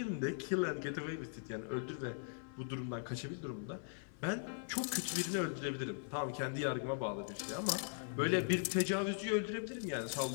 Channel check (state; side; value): silent; right; 51 dB below the other